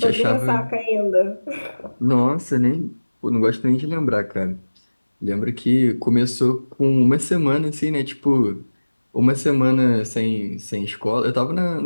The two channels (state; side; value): inverted; both; correlation -1.00